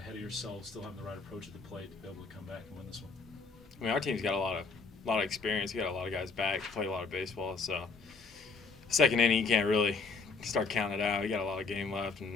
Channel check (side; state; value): right; quieter; 4.5 dB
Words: of yourselves, still having the right approach at the plate to be able to come back and win this one. I mean, our team's got a lot of experience. We got a lot of guys back, played a lot of baseball. So, second inning, you can't really start counting it out. We got a lot of game left,